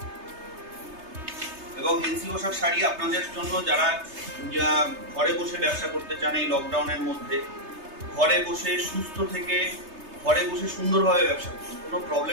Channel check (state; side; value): late; left; 3.3 ms